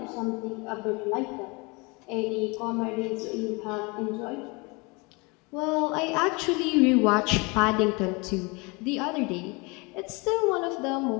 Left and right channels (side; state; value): right; quieter; 27.8 dB